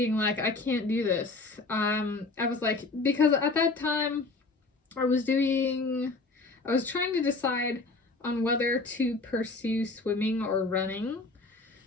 like, I can't do this. I was like, because at that time I was trying to decide on whether to pursue swimming or running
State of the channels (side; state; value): right; quieter; 3.6 dB